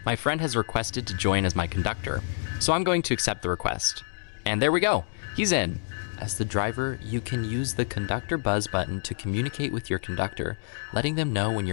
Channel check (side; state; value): right; silent; digital silence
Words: My friend has requested to join as my conductor, so I'm going to accept the request. And there we go, he's in. As the driver, you can use the conductor buzz button to communicate with your conductor, letting them know when